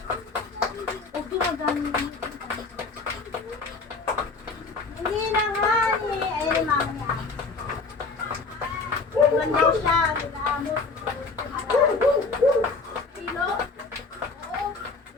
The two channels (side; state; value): right; quieter; 4.1 dB